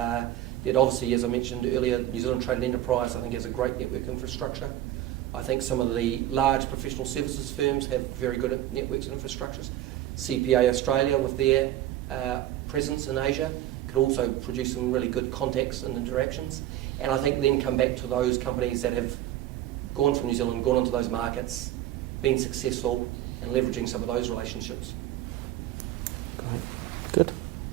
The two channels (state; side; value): quieter; left; 13.4 dB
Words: obviously, as I mentioned earlier, New Zealand Trade and Enterprise I think has a great network infrastructure. I think some of the large professional services firms have very good networks and infrastructures. CPA Australia with their presence in Asia could also produce some really good contacts and interactions. And I think then come back to those companies that have gone from New Zealand, gone into those markets, been successful, and leveraging some of those relationships. Great. Good.